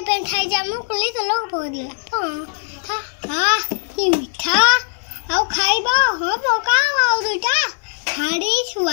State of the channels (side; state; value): right; silent; 66 dB below the other